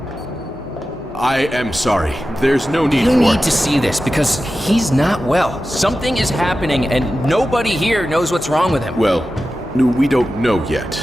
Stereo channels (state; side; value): normal; both; correlation 0.93